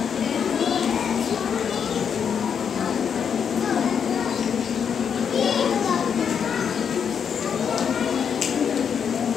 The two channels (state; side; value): quieter; right; 7.3 dB